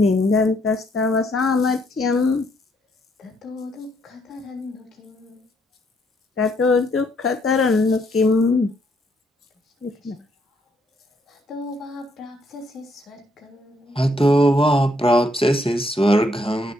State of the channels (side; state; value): both; normal; correlation 0.71